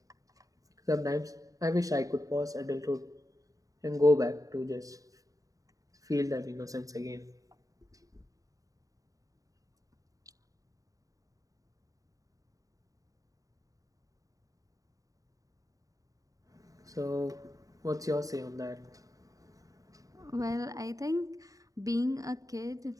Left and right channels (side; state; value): left; late; 0.17 ms